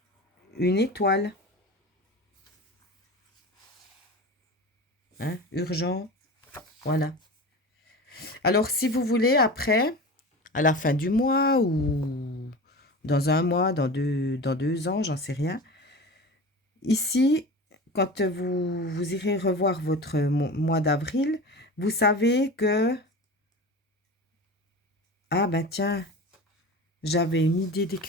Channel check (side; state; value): both; normal; correlation 0.32